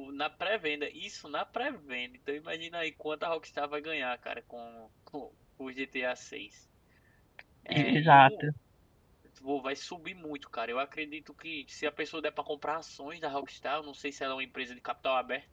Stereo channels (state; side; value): identical; both; correlation 1.00